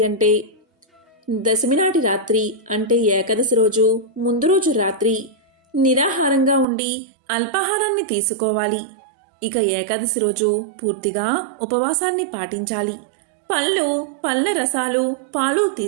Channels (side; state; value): left; drops out; at 6.7 s